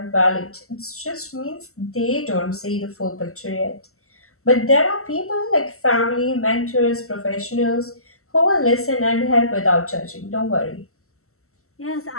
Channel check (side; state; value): right; late; 0.63 ms